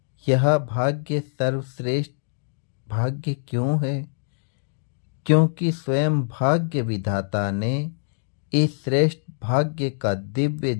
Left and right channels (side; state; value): right; silent; digital silence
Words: यह भाग्य सर्वश्रेष्ठ भाग्य क्यों है? क्योंकि स्वयं भाग्य विधाता ने इस श्रेष्ठ भाग्य का दिव्य